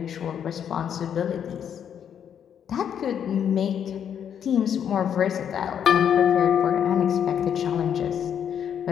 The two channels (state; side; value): quieter; right; 8.7 dB